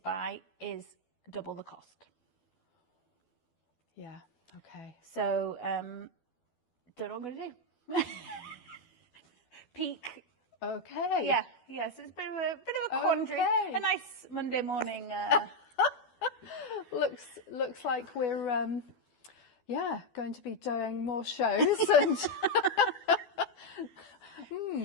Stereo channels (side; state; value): right; late; 12 ms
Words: is double the cost. Yeah. Okay. So don't know what I'm going to do. Peak. Okay. Yeah. Yes. It's a bit of a quandary. Okay. A nice Monday morning. Looks like we're going to be doing more shows and.